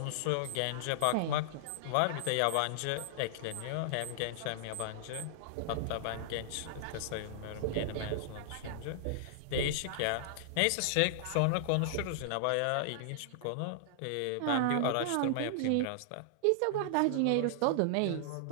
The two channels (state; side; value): different; both; correlation -0.01